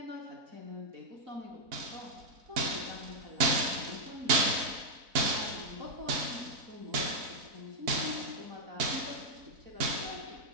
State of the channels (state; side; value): late; left; 4.0 ms